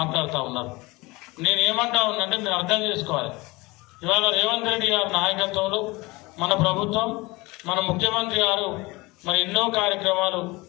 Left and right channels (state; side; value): quieter; right; 23.0 dB